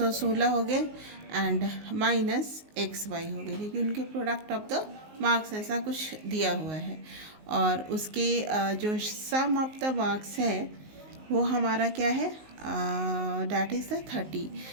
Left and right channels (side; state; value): left; late; 19 ms